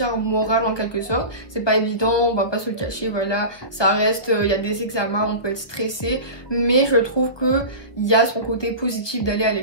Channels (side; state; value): right; late; 1.2 ms